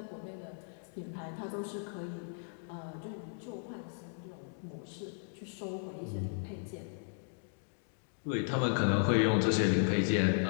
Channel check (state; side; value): silent; right; digital silence